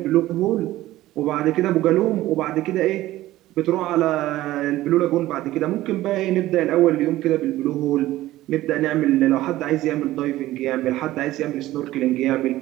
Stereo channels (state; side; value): quieter; left; 15.8 dB